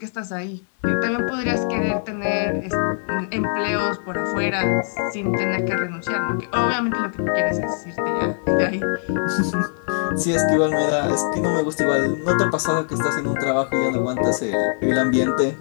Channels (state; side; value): silent; right; digital silence